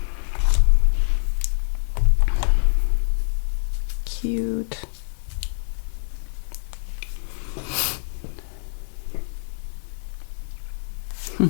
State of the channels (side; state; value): right; silent; 60 dB below the other